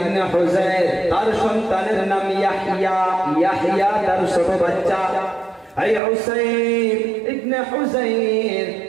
হুযাইর, তার সন্তানের নাম ইয়াহইয়া। ইয়াহইয়া তার ছোট বাচ্চা। এই উসাইর ইবনে হুযাইর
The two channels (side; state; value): left; drops out; at 6.0 s